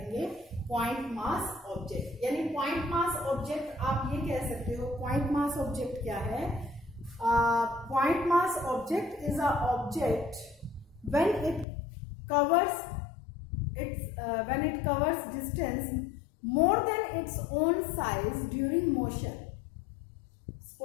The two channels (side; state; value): right; drops out; at 11.7 s